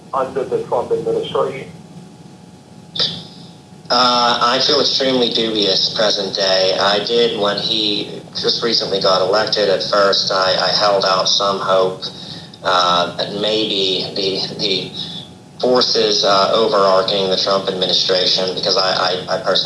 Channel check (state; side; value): identical; both; correlation 1.00